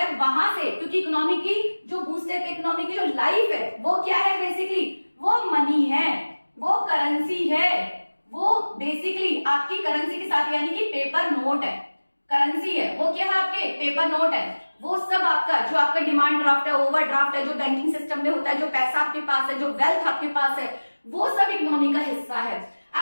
वहां से, क्योंकि इकोनॉमी की जो बूस्टअप, इकोनॉमी की जो लाइफ है, वो क्या है बेसिकली, वो मनी है, वो करेंसी है, वो बेसिकली आपकी करेंसी के साथ, यानी कि पेपर नोट है, करेंसी है, वो क्या है आपके पेपर नोट है। वो सब आपका जो आपका डिमांड ड्राफ्ट है, ओवर ड्राफ्ट है, जो बैंकिंग सिस्टम में होता है, जो पैसा आपके पास है, जो वेल्थ आपके पास है, वो सब इकोनॉमी का हिस्सा है।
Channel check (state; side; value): inverted; both; correlation -1.00